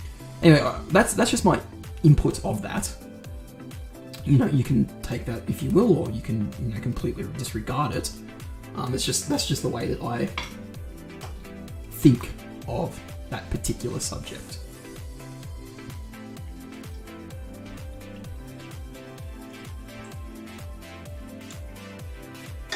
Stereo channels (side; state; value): both; identical; correlation 1.00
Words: Anyway, that's just my input of that. You can take that if you will, or you can, completely disregard it. That's just the way that I think of that particular subject.